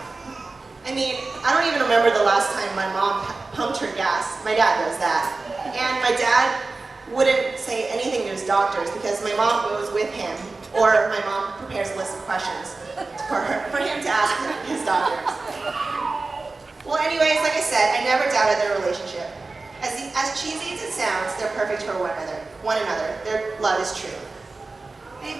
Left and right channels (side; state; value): left; quieter; 3.6 dB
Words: I mean, I don't even remember the last time my mom pumped her gas. My dad does that. And my dad wouldn't say anything to his doctors because my mom goes with him, or my mom prepares a list of questions for him to ask his doctors. Well, anyways, like I said, I never doubted their relationship. As cheesy as it sounds, they're perfect for one another. Their love is true.